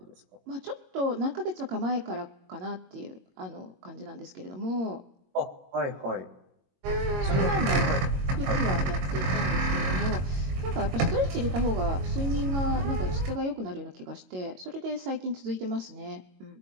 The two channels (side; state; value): left; late; 22 ms